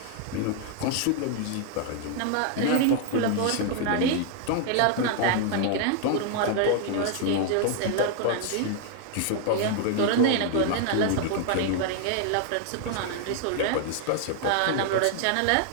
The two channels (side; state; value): both; different; correlation 0.00